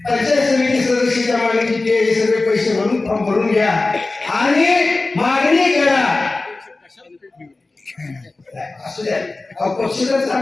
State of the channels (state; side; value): quieter; right; 3.3 dB